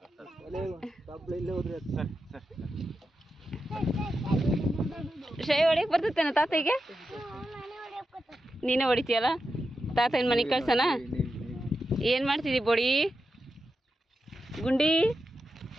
ಶ್ರೇಯ ಹೊಡಿಯಕ್ ಬರ್ತೇನ ತಾತಗೆ ನೀನೇ ಹೊಡಿತೀಯಲ್ಲ ತಾತ ಏನ್ ಮನೆ ಕಳ್ಸನ ಏನ್ ಮಾಡ್ತಿದ್ದಿ ಬೊಡಿ ಗುಂಡಿ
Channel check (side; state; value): both; normal; correlation 0.89